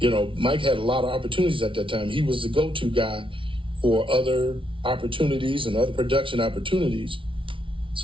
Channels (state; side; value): late; left; 0.25 ms